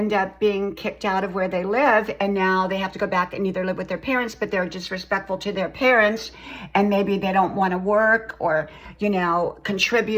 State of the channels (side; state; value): both; identical; correlation 1.00